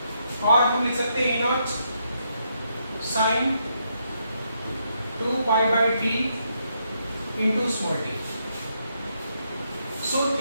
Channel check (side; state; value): both; inverted; correlation -0.78